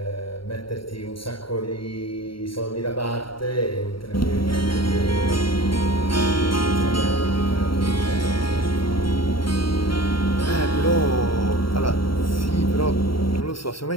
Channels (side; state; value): right; late; 0.73 ms